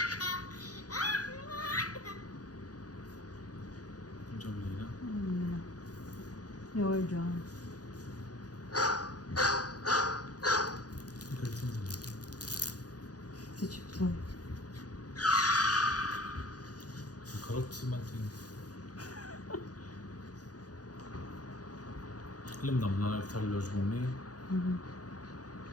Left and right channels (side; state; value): right; late; 0.68 ms